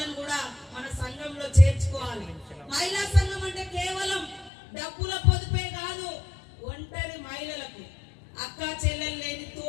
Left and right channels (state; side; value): drops out; right; at 4.5 s